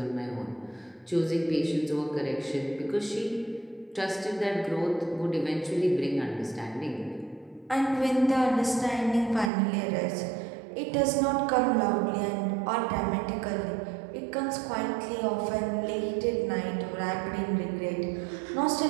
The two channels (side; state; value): left; drops out; at 9.5 s